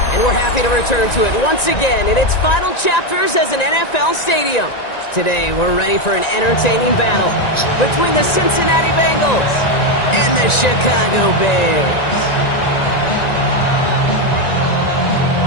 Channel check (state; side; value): late; right; 1.9 ms